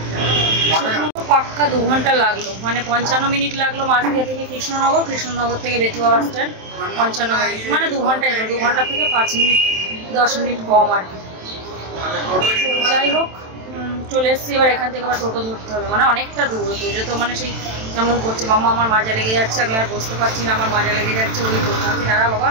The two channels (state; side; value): late; left; 27 ms